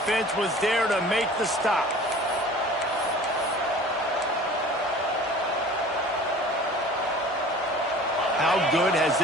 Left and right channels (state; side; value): normal; both; correlation 0.44